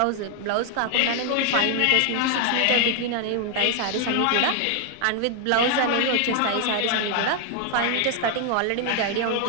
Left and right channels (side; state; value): both; different; correlation 0.00